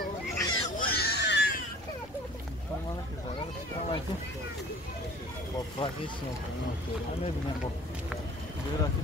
با پراگیسیون همه بینم با دیراتی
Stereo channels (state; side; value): normal; both; correlation 0.48